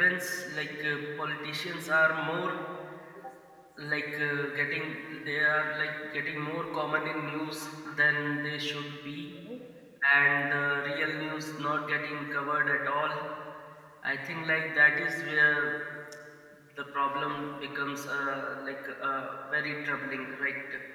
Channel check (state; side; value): identical; both; correlation 1.00